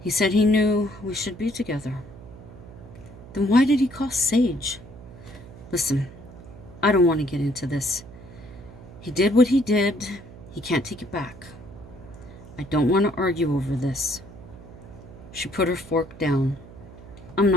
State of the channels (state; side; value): noise; right; hum, 17 dB below the sound